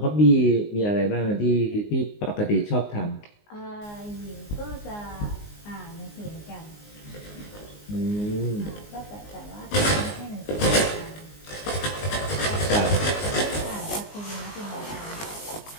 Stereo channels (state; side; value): late; right; 19 ms